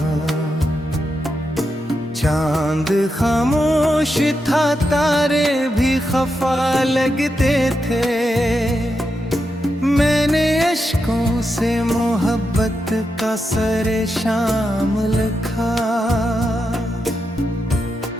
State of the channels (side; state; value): both; normal; correlation 0.86